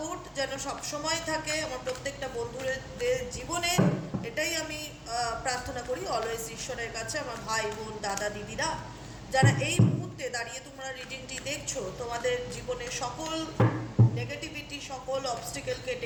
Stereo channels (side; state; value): both; identical; correlation 1.00